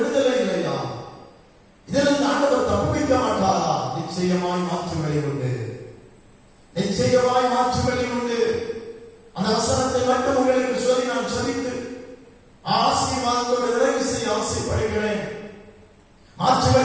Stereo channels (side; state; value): both; identical; correlation 1.00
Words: இல்லையா? இதிலிருந்து ஆண்டவர் தப்புவிக்க மாட்டாரா? நிச்சயமாய் மாற்று வழி உண்டு. நிச்சயமாய் மாற்று வழி உண்டு. அந்த வசனத்தை மட்டும் உங்களுக்கு சொல்லி நான் சொல்லித்து ஆசீர்வாதத்தோடு நிறைவு செய்ய ஆசைப்படுகிறேன். மாற்று